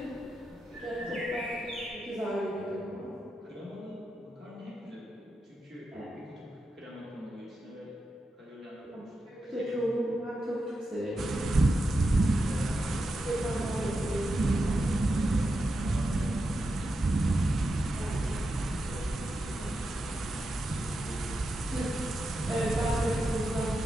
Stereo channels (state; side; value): normal; both; correlation 0.88